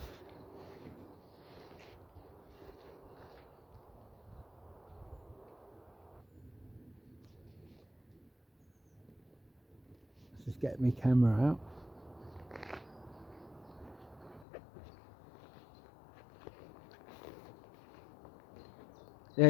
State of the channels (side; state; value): right; drops out; at 14.5 s